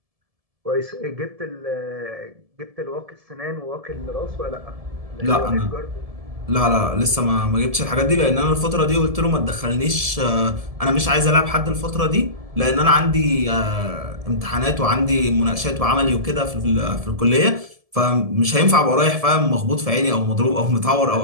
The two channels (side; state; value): left; late; 1.7 ms